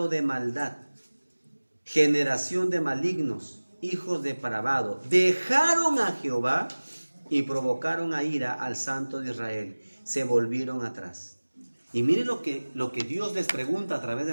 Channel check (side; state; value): both; inverted; correlation -1.00